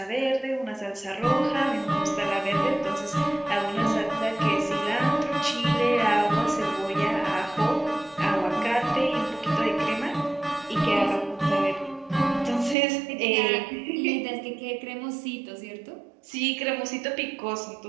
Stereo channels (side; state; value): left; drops out; at 12.8 s